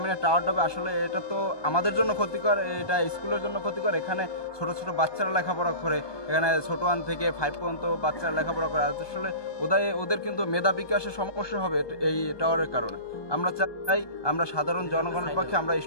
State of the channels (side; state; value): right; late; 1.2 ms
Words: টাওয়ারটা হবে, আসলে এটা তো আমাদের জন্য ক্ষতিকর, এটা স্কুলের জন্য ক্ষতিকর। এখানে ছোট ছোট বাচ্চারা লেখাপড়া করে, এখানে ছোট 1 থেকে 5 পর্যন্ত বাচ্চারা লেখাপড়া করে। আসলে ওদের কিন্তু মেধা বিকাশের সমস্যা হবে এই টাওয়ারের কারণে। আমরা চাই, আমরা সাধারণ জনগণের পক্ষে, আমরা